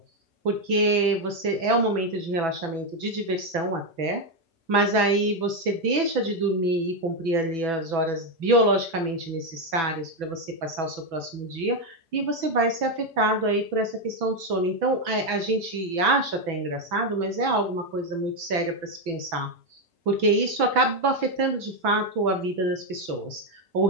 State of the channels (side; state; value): left; late; 6.0 ms